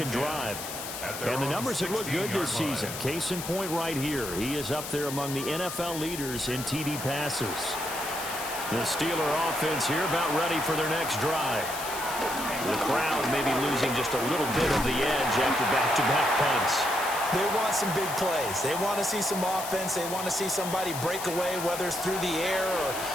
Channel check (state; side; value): noise; left; hiss, 8 dB below the sound